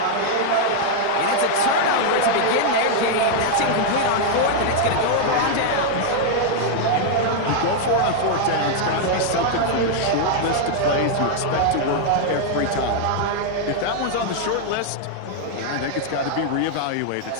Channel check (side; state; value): both; different; correlation -0.01